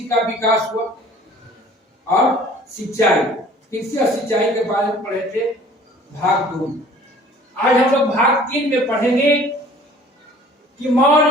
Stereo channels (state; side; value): normal; both; correlation 0.50